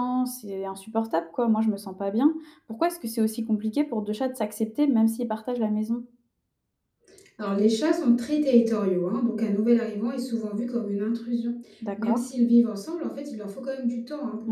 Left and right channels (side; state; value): both; identical; correlation 1.00